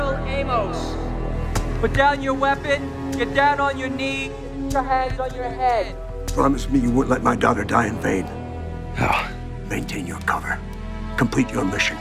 Amos. Put down your weapon, get down on your knee, put your hands on your head. Promise me you won't let my daughter die in vain. Oh. Maintain your cover. Complete your mission.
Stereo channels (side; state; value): both; identical; correlation 1.00